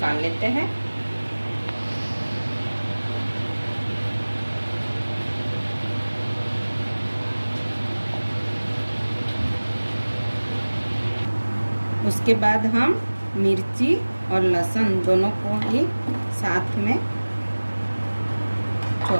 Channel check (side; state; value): both; inverted; correlation -1.00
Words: लेते हैं। उसके बाद हम मिर्ची और लहसुन दोनों को ही साथ में